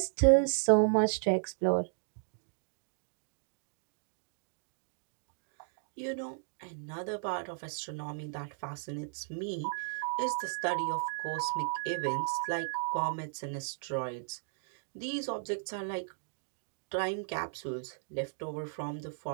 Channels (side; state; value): left; silent; digital silence